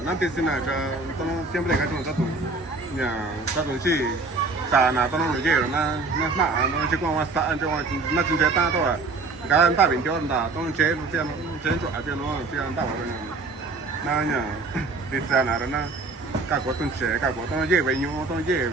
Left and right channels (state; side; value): quieter; left; 3.7 dB